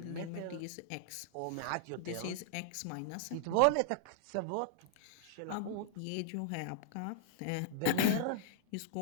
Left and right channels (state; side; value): different; both; correlation -0.01